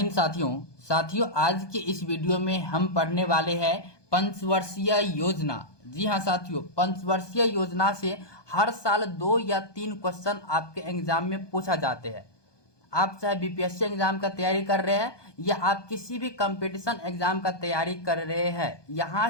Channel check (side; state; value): right; late; 1.2 ms